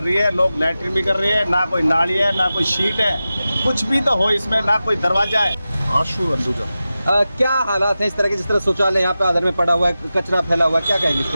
रही है, लोग लैट्रिन भी कर रहे हैं, ना कोई नाली है, ना कोई शीट है, कुछ भी तो हो इसमें, ना कोई दरवाजा है। आशु अंदुजा। क्या हालात हैं इस तरह के? जिस तरह शौचालय यहाँ पे आधर में पड़ा हुआ है, कचरा फैला हुआ है, क्या कहेंगे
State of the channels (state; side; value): inverted; both; correlation -0.94